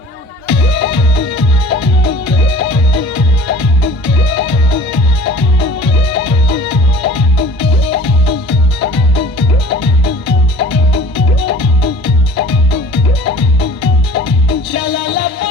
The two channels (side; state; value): both; normal; correlation 0.47